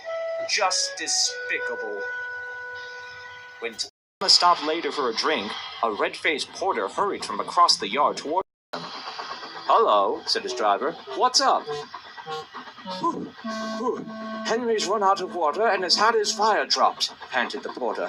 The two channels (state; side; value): identical; both; correlation 1.00